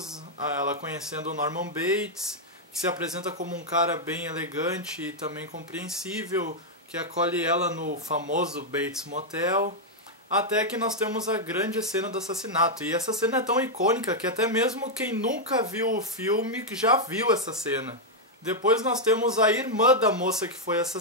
ela conhecendo o Norman Bates, que se apresenta como um cara bem elegante e também compreensível, que acolhe ela no famoso Bates Motel, até que nós temos a grande cena do assassinato. E essa cena é tão icônica que até mesmo quem nunca viu o filme já viu essa cena. Depois nós temos a irmã da moça que foi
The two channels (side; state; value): both; normal; correlation -0.02